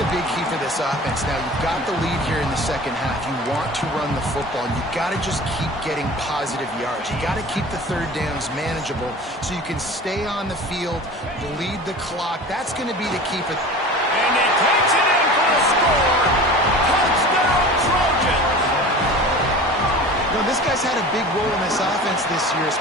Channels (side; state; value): both; normal; correlation 0.38